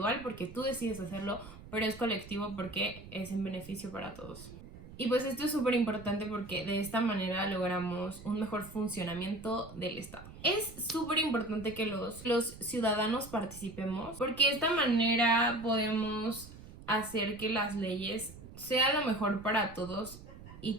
porque tú decides hacerlo, pero es colectivo porque es en beneficio para todos. Y pues esto es súper importante porque de esta manera logramos un mejor funcionamiento del Estado. Es súper importante que los ciudadanos participemos, porque de esta manera podemos hacer que las leyes sean lo mejor para todos y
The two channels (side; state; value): right; noise; rumble, 16 dB below the sound